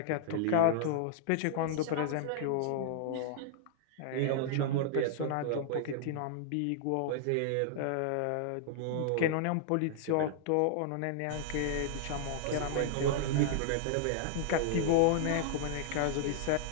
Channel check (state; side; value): different; both; correlation -0.01